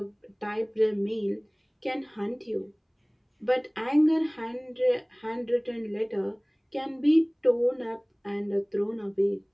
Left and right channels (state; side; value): identical; both; correlation 1.00